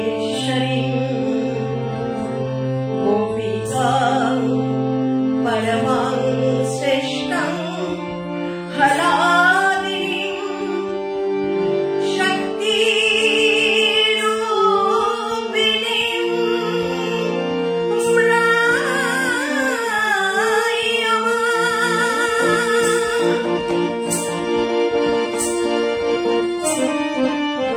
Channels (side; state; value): both; identical; correlation 1.00